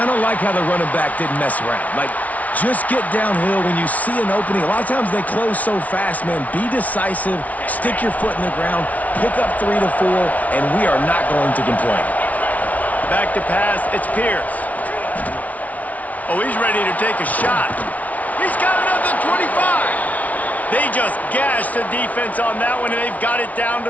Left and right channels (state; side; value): late; right; 0.070 ms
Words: of like how the running back didn't mess around. Like, just get downhill when you see an opening. A lot of times they close so fast, man. Be decisive, stick your foot in the ground, pick up 3 to 4, and we are not going to complain. Back to pass, it's Pierce. Oh, he's ready to take a shot. He's got another 25. They just gashed the defense on that one, and they've got it down